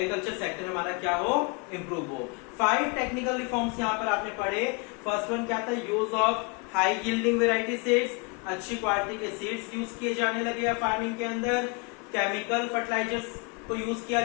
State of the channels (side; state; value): right; quieter; 31.1 dB